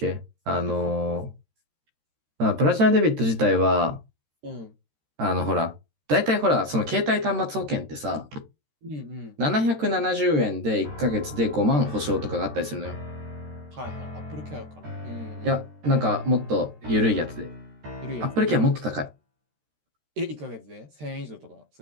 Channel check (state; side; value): late; left; 13 ms